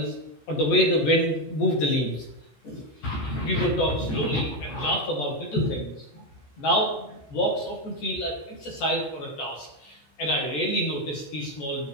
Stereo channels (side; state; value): right; late; 14 ms